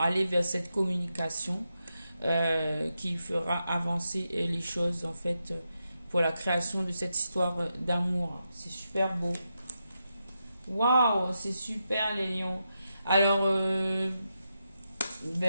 aller vers cette communication qui fera avancer les choses en fait pour la création de cette histoire d'amour. C'est super beau. Waouh, c'est super les lions. Alors,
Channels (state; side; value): inverted; both; correlation -0.86